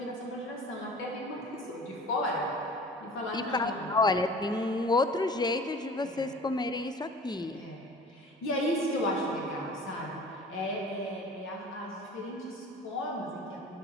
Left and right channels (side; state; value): both; normal; correlation 0.43